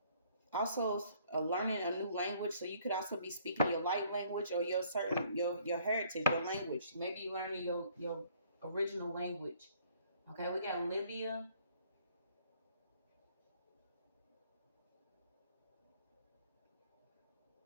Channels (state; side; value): inverted; both; correlation -0.61